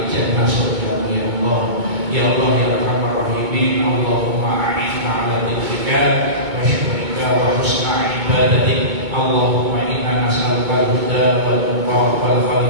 surga ya Allah. Ya Allah ya Arhamar Rahimin. Allahumma a'inna ala dzikrika wa syukrika wa husna ibadatik. Allahumma inna nas'aluka al-huda wal tuqa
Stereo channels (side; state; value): left; late; 2.2 ms